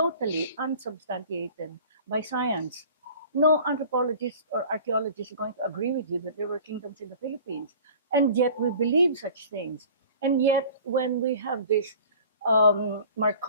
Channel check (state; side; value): inverted; both; correlation -0.45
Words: unsubstantiated by science. No anthropologist or archaeologist is going to agree with you that there were kingdoms in the Philippines. And yet we believe such things. And yet when we have this